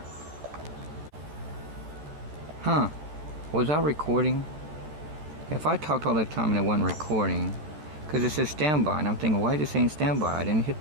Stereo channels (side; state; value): left; late; 13 ms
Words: Huh? Was I recording? If I talked all that time and it wasn't recording, because it says standby, and I'm thinking, why is it saying standby? I didn't hit